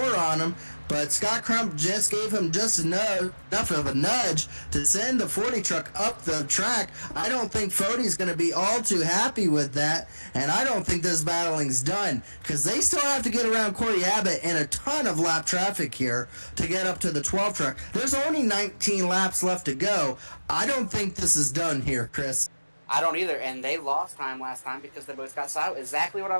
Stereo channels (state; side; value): inverted; both; correlation -1.00